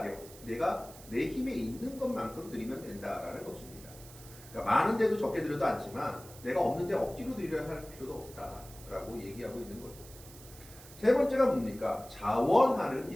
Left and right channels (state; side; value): noise; right; hiss, 18 dB below the sound